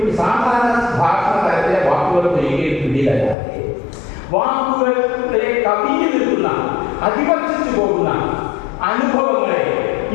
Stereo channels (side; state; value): right; drops out; at 3.4 s